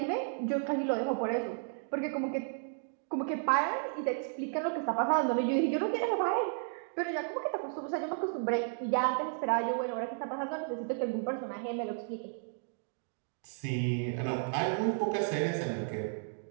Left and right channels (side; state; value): left; silent; digital silence